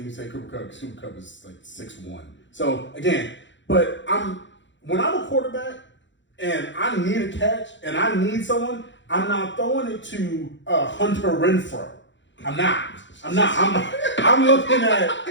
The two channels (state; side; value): late; right; 0.54 ms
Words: say Cooper Kupp because Cooper Kupp is like 6'1". So again, but when I'm a quarterback and I need a catch and I need someone, I'm not throwing it to Hunter Renfrow. I'm not. I'm looking at